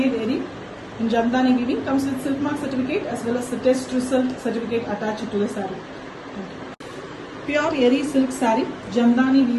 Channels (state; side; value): identical; both; correlation 1.00